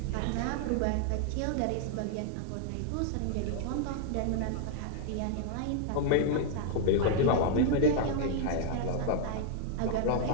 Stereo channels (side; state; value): both; different; correlation -0.01